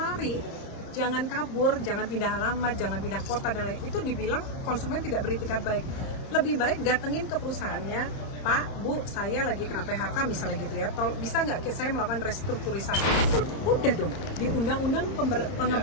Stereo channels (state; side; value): late; right; 30 ms